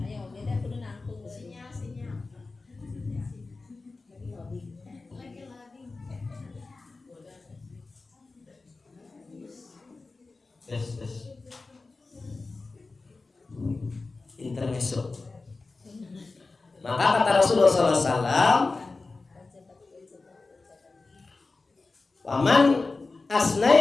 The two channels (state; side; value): quieter; right; 3.7 dB